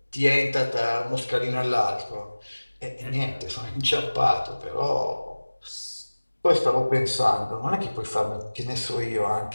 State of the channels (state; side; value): inverted; both; correlation -1.00